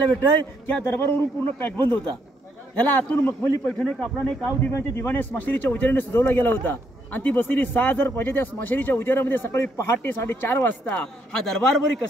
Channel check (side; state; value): both; normal; correlation 0.74